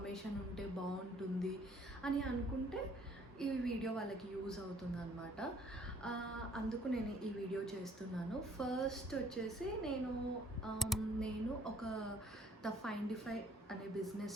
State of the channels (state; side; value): normal; both; correlation 0.61